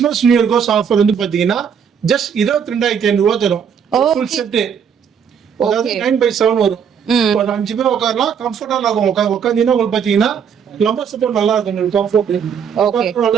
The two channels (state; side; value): quieter; left; 7.4 dB